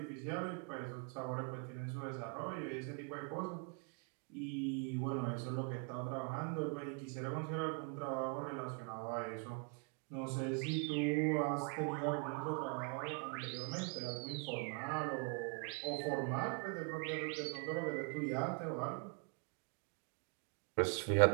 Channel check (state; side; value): quieter; left; 35.2 dB